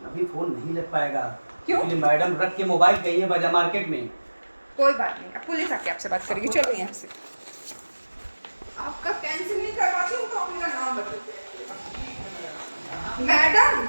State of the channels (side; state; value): both; inverted; correlation -1.00